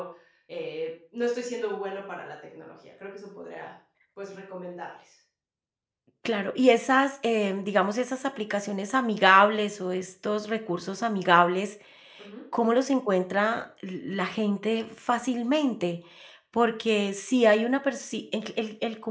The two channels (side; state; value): both; identical; correlation 1.00